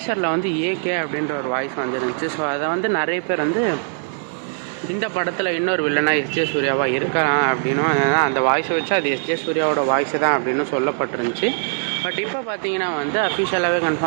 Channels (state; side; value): silent; left; 65 dB below the other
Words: வந்து ஏகே அப்படின்ற ஒரு வாய்ஸ் வந்துருந்துச்சு. ஸோ அதை வந்து நிறைய பேர் வந்து இந்த படத்தில் இன்னொரு வில்லனாக எஸ்ஜே சூர்யாவாக இருக்கலாம் அப்படின்னும், அந்த வாய்ஸை வச்சு அது எஸ்ஜே சூர்யாவோட வாய்ஸை தான் அப்படின்னு சொல்லப்பட்டிருந்துச்சு. பட் இப்போ பார்த்தீங்கன்னா வந்து அஃபிஷியலாகவே